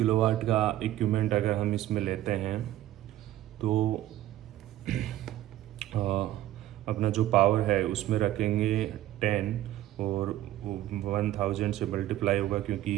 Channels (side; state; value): left; quieter; 13.9 dB